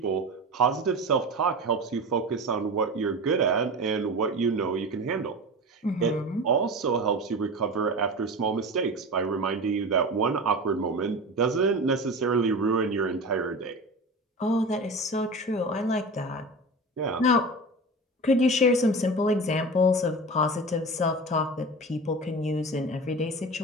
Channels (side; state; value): both; normal; correlation 0.30